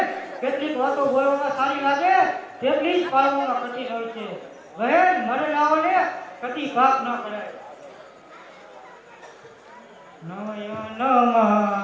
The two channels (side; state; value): both; identical; correlation 1.00